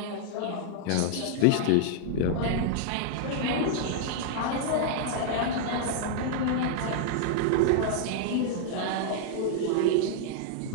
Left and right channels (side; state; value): both; different; correlation -0.01